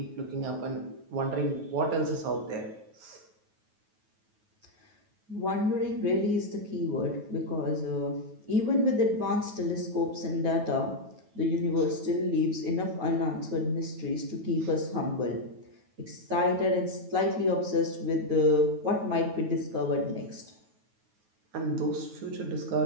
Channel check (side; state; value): left; late; 9.3 ms